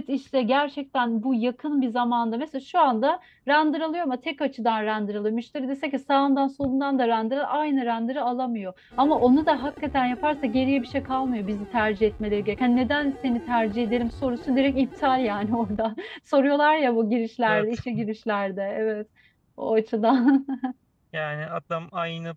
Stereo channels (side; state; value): both; identical; correlation 1.00